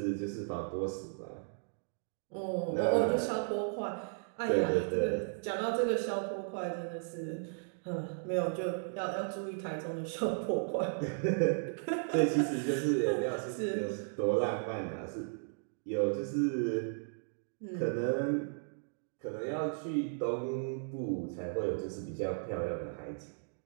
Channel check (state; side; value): silent; left; digital silence